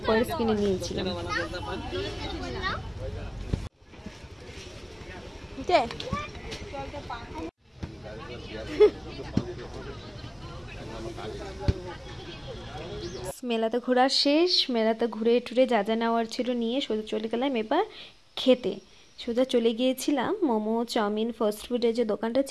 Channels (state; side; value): identical; both; correlation 1.00